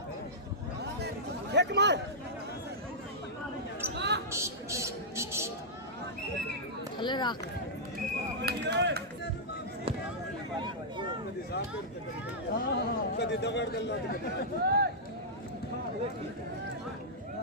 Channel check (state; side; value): normal; both; correlation -0.12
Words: एक मार थले रख कधी दगड दिला